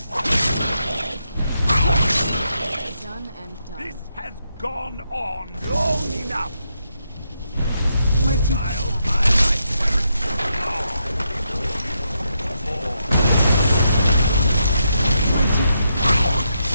This has gone on long enough. Child, my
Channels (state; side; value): inverted; both; correlation -0.81